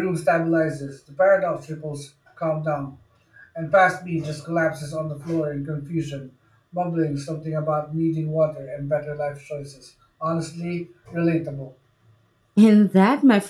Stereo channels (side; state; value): both; identical; correlation 1.00